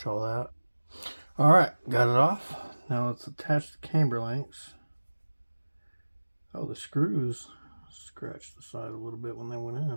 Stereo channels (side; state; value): both; inverted; correlation -1.00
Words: all that. Alright, got it off. Now let's attach the camber links. Oh, the screws scratched the side a little bit when they went